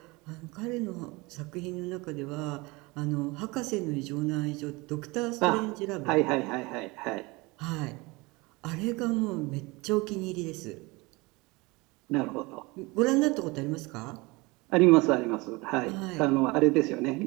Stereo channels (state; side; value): quieter; left; 24.2 dB